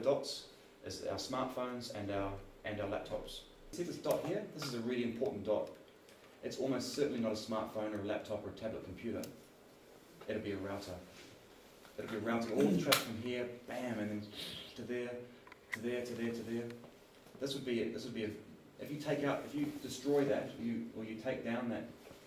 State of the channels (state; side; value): identical; both; correlation 1.00